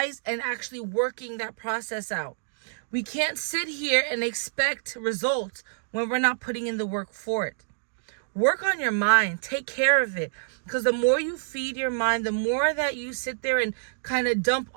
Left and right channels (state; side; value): silent; left; digital silence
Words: and actually working that process out. We can't sit here and expect results when we're not putting in the work for it. Work on your mind. Take care of it. Because the more you feed your mind, the more that you sit there and kind of dump